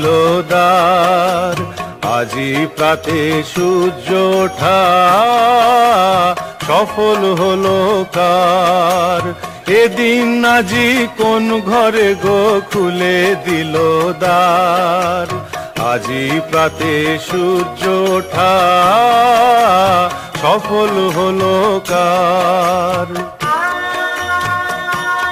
দ্বার, আজি প্রাতে সূর্য ওঠা সফল হলো কার। এদিন আজি কোন ঘরে গো খুলে দিল দ্বার, আজি প্রাতে সূর্য ওঠা সফল হলো কার।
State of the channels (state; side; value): identical; both; correlation 1.00